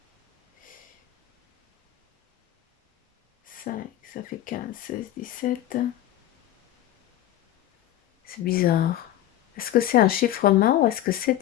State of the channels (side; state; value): right; quieter; 13.2 dB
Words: 5, ça fait 15, 16, 17. C'est bizarre. Est-ce que c'est un chiffrement ou est-ce que c'est